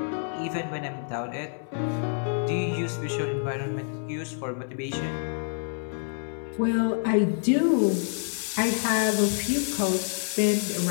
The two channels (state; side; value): silent; right; 60 dB below the other